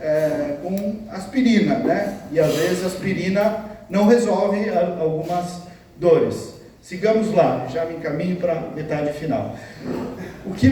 com aspirina, né? E às vezes a aspirina não resolve algumas dores. Sigamos lá, já me encaminho para a metade final. O que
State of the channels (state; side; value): identical; both; correlation 1.00